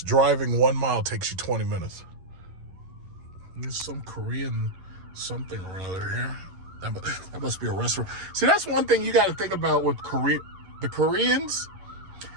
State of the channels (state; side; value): late; left; 11 ms